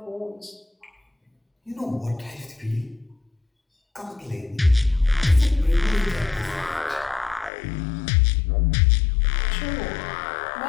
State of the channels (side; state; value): right; drops out; at 7.5 s